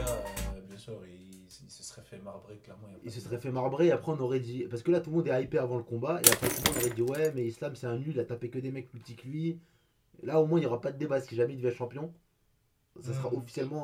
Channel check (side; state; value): both; identical; correlation 1.00